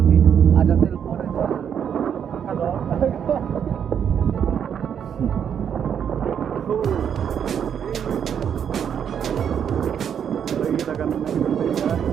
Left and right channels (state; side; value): quieter; left; 8.3 dB